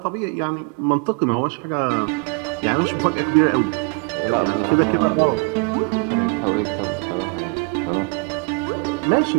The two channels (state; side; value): quieter; left; 32.3 dB